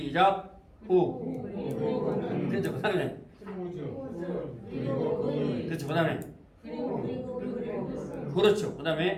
후. 그렇죠. 그다음에 그렇죠. 그다음에 그렇죠.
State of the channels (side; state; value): both; identical; correlation 1.00